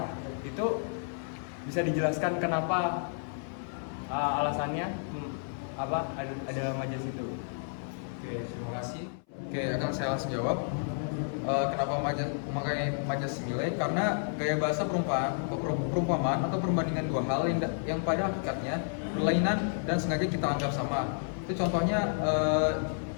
Itu bisa dijelaskan kenapa alasannya apa ada majas itu? Oke, terima kasih. Oke, akan saya langsung jawab. Kenapa memakai majas simile? Karena gaya bahasa perumpamaan atau perbandingan dua hal yang pada hakikatnya berlainan dan sengaja kita anggap sama. Itu contohnya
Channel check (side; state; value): right; silent; 57 dB below the other